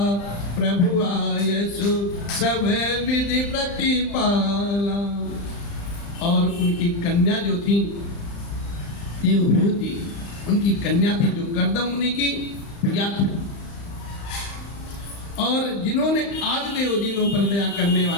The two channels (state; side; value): late; right; 35 ms